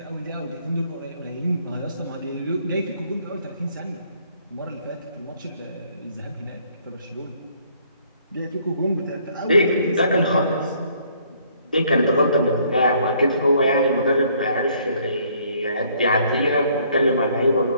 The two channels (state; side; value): inverted; both; correlation -0.64